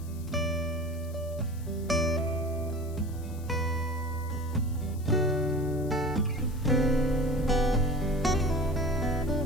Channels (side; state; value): left; noise; hiss, 22 dB below the sound